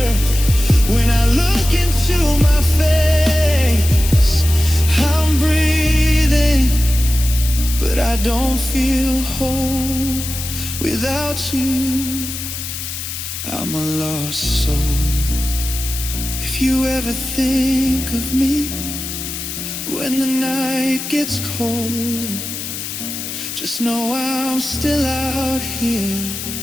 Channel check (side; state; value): left; noise; hiss, 7 dB below the sound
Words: when I look into my face. I'm breathing, but I don't feel whole without you. I'm a lost soul. If you ever think of me when the night gets cold, just know I'm still out here